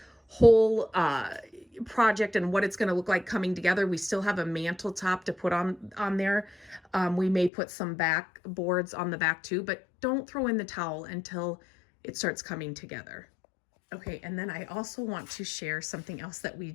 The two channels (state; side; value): drops out; right; at 7.5 s